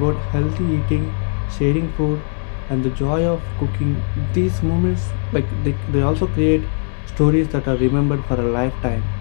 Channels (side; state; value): right; silent; 66 dB below the other